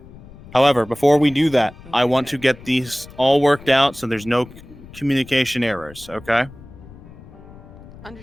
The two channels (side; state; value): left; noise; rumble, 19 dB below the sound